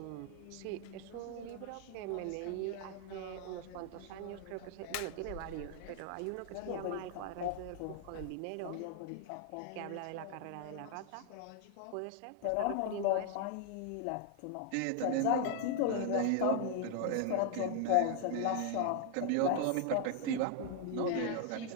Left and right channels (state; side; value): different; both; correlation 0.00